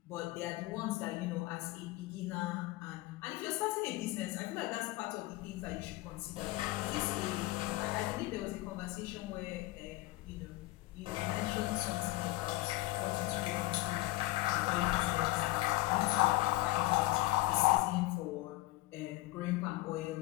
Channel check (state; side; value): quieter; right; 19.1 dB